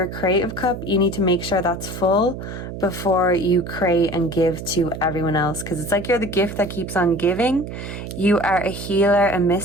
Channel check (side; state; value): right; noise; hum, 9 dB below the sound